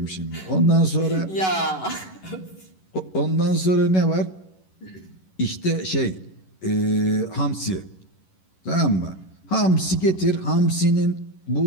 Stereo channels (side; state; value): right; late; 11 ms